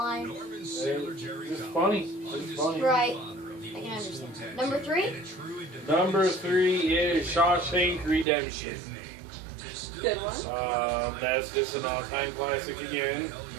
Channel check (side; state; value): left; drops out; at 8.2 s